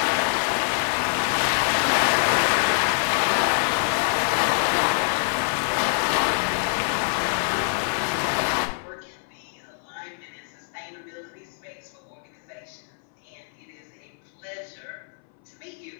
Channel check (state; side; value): silent; right; 62 dB below the other